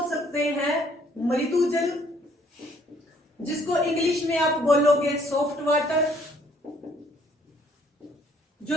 सकते हैं मृदु जल, जिसको इंग्लिश में आप बोलोगे सॉफ्ट वाटर। जो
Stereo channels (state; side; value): normal; both; correlation 0.62